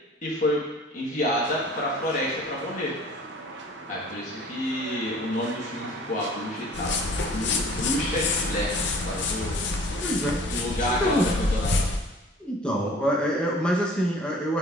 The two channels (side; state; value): both; normal; correlation 0.49